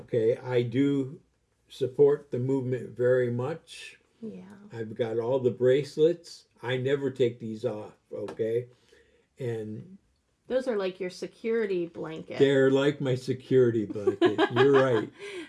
I do support the movement very much. Yeah. I've got all the bracelets. I never take these off, okay? And those are like your security blanket. They're like my security blanket. You're right.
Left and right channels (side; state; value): both; identical; correlation 1.00